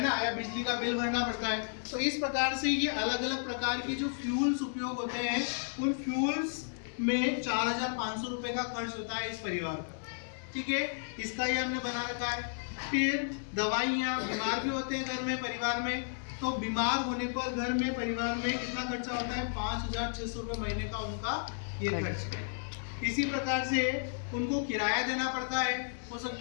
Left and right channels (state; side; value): silent; right; digital silence